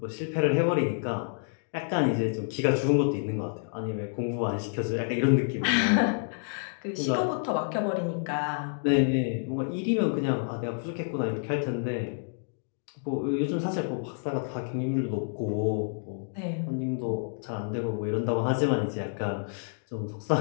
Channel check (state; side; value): silent; right; digital silence